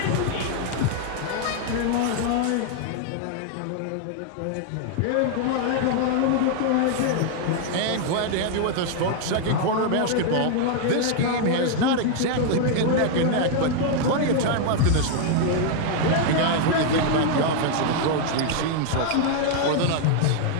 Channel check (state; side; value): different; both; correlation 0.00